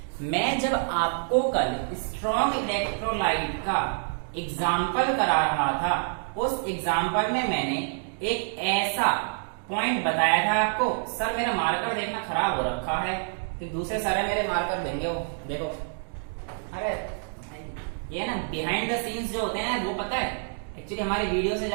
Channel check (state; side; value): silent; left; digital silence